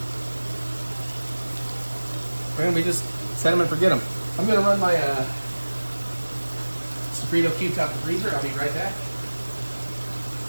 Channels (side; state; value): both; inverted; correlation -1.00